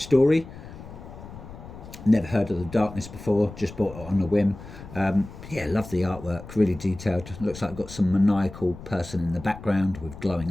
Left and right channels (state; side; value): noise; left; rumble, 14 dB below the sound